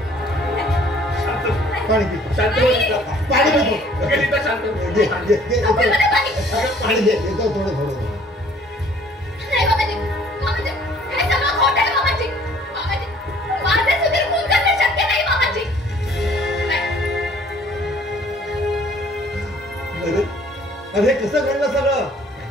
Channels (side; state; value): both; normal; correlation 0.56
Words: पाणी पी. पाणी दे थोडं. नाही मामाजी मामाजी हे सगळं खोटं आहे मामाजी. मामाजी माझे सुधीर खून करणं शक्य नाही मामाजी. अरे कसं घडलं सगळं?